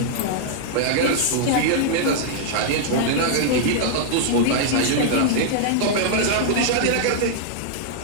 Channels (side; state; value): both; different; correlation -0.01